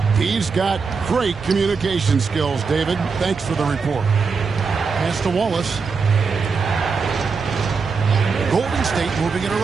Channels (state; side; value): quieter; left; 5.1 dB